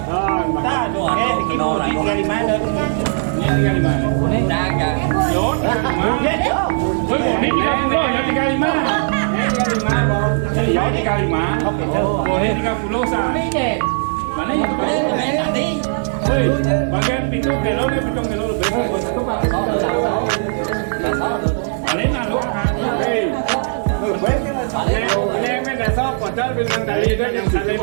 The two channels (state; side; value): silent; left; digital silence